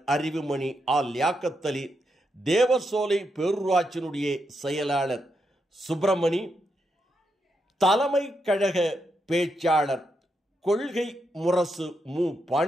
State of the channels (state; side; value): normal; both; correlation 0.82